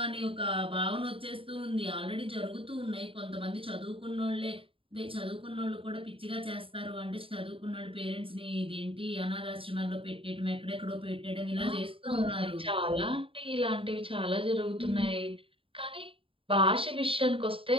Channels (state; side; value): late; left; 0.26 ms